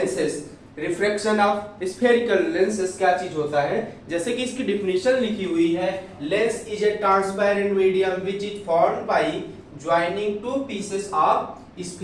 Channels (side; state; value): both; identical; correlation 1.00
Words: refraction of spherical lenses क्या चीज होता है। जैसे कि इसकी डिफिनेशन लिखी हुई है, lens is a transparent medium which is formed by joining two pieces of